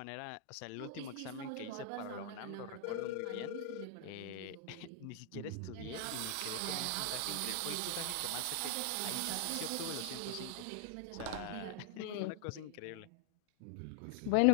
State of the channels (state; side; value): different; both; correlation 0.00